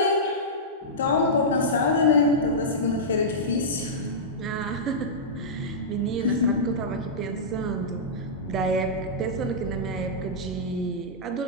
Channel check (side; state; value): both; normal; correlation -0.13